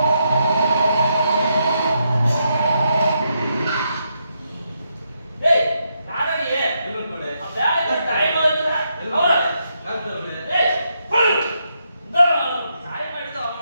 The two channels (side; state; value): both; inverted; correlation -0.80